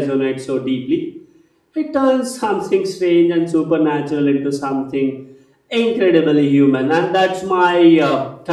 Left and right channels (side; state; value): both; identical; correlation 1.00